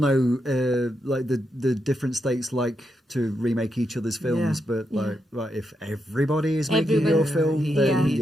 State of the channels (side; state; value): both; normal; correlation 0.83